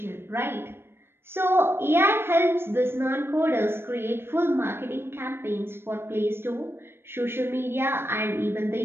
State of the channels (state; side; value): late; left; 0.11 ms